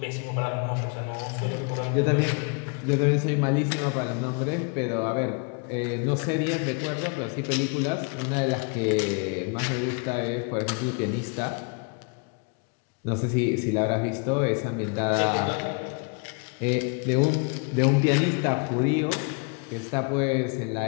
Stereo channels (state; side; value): quieter; right; 35.5 dB